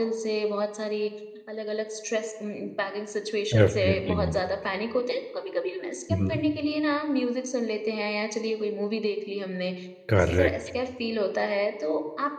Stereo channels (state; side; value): identical; both; correlation 1.00